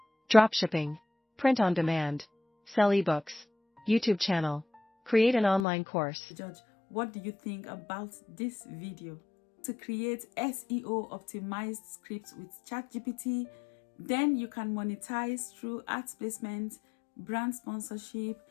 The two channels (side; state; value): right; drops out; at 5.7 s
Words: dropshipping, print on demand, sell ebooks, YouTube channel, create an online course. Judge, what do you think about this video? To create SEO optimized scripts with ChatGPT, then you can monetize through ads placement, brand sponsorship,